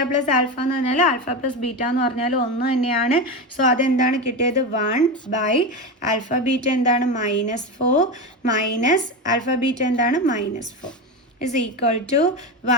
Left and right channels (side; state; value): both; normal; correlation 0.18